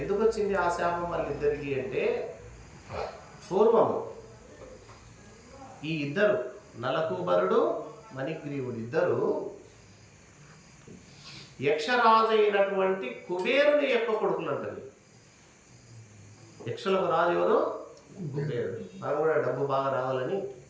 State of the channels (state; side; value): identical; both; correlation 1.00